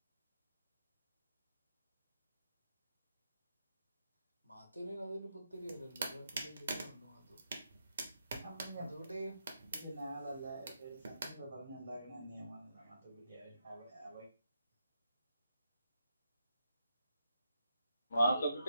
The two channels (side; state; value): both; inverted; correlation -0.82